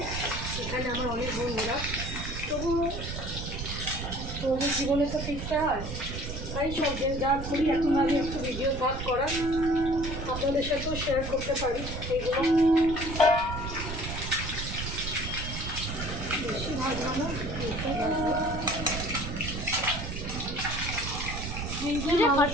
এখানে আমার অনেক বন্ধুরা, তবুও জীবনে তো শিখতে হয়। তাই সব যা করি এখন আমি একটু ভিডিও ভাগ করা আপনাদের সাথেও শেয়ার করতে পারি। এইগুলো বেশি ভাজবো না,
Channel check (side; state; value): right; noise; rumble, 6 dB below the sound